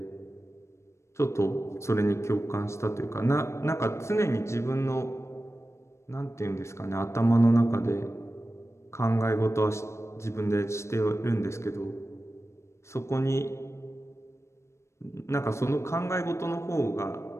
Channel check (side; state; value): right; late; 0.13 ms